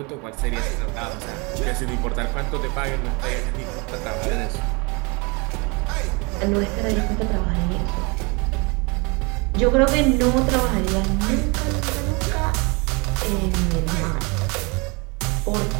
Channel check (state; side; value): quieter; left; 29.1 dB